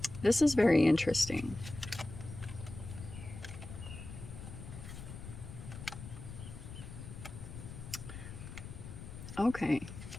This is very interesting. Okay.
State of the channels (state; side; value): noise; left; rumble, 11 dB below the sound